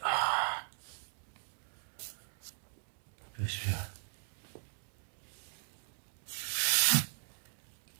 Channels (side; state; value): left; silent; digital silence